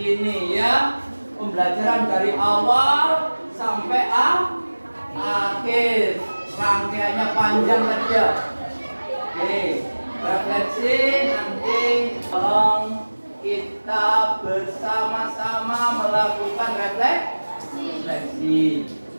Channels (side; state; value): both; inverted; correlation -1.00